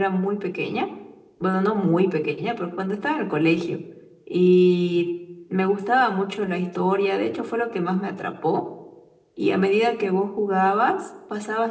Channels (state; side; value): identical; both; correlation 1.00